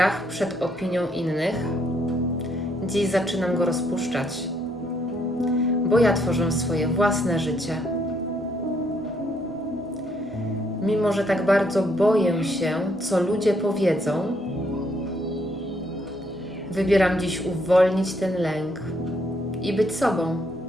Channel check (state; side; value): normal; both; correlation 0.71